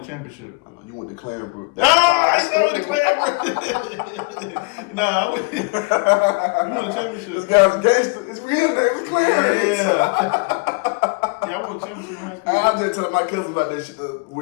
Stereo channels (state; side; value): quieter; right; 31.0 dB